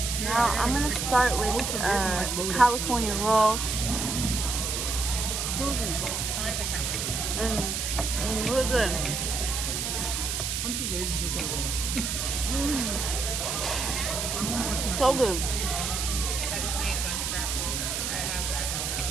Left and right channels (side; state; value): right; noise; hiss, 1 dB below the sound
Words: Now I'm gonna start with California roll. Really good. I'm too lazy for pickled. So good. I just made a bunch of wraps.